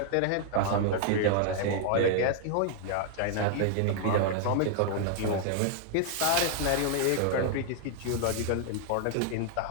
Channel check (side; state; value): both; different; correlation 0.00